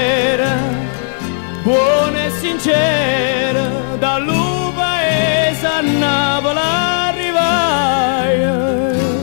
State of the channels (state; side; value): silent; right; digital silence